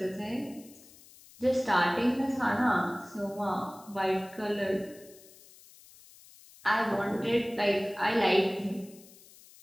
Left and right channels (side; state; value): left; noise; hiss, 23 dB below the sound